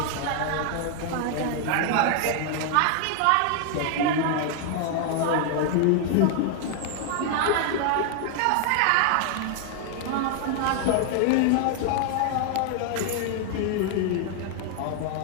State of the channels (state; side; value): different; both; correlation 0.00